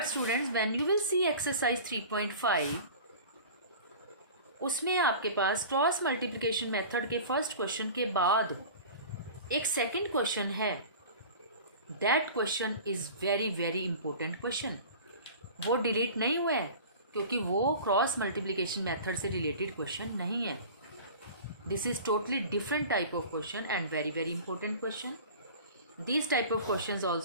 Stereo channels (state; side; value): inverted; both; correlation -0.39